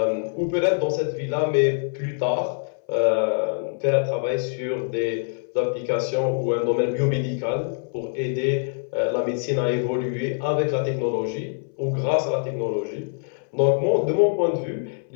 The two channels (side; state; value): right; silent; 62 dB below the other